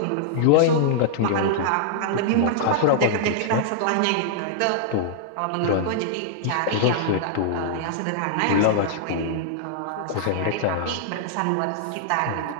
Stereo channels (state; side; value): different; both; correlation -0.01